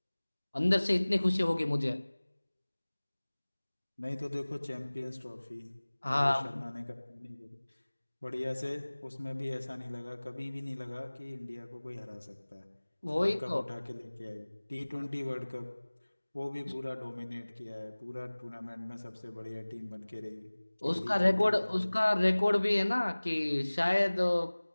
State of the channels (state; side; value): inverted; both; correlation -1.00